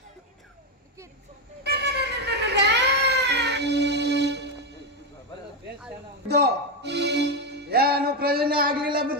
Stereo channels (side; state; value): both; normal; correlation 0.07